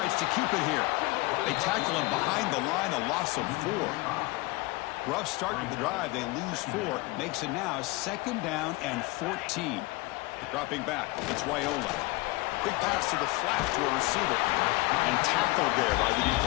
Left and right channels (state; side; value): quieter; right; 22.4 dB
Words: to keep it here. They tackle him behind the line, a loss of 4. Rough start to the drive. They lose 4. Makes it now 2nd down and 14. Dropping back, it's Raiola. Quick pass to the flat to a receiver. And tackled there by the